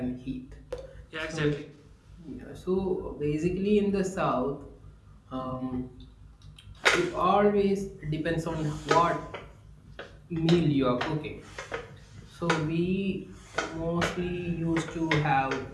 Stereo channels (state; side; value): identical; both; correlation 1.00